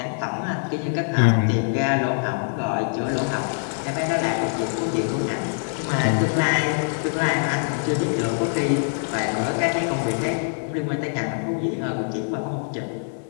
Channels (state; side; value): silent; right; 63 dB below the other